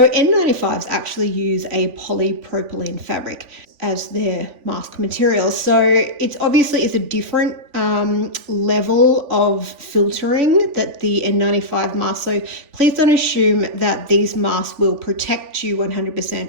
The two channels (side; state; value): left; late; 3.5 ms